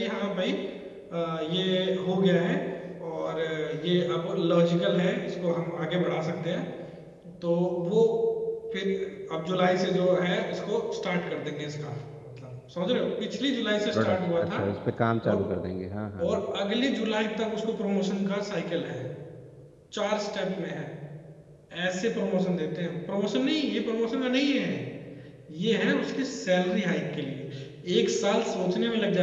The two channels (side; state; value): both; identical; correlation 1.00